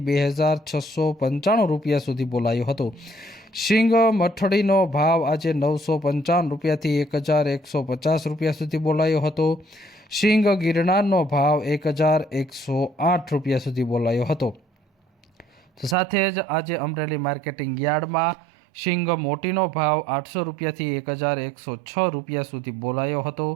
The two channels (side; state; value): left; drops out; at 16.0 s